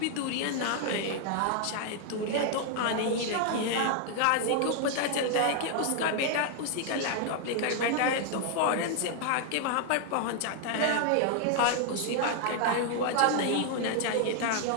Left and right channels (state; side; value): different; both; correlation 0.00